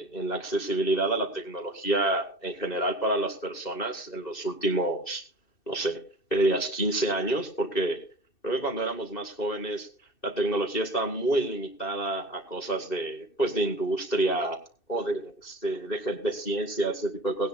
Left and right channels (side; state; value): right; late; 2.6 ms